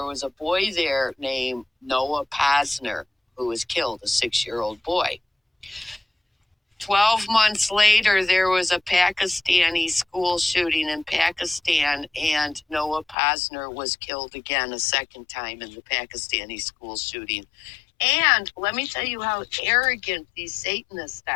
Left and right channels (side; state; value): right; drops out; at 13.2 s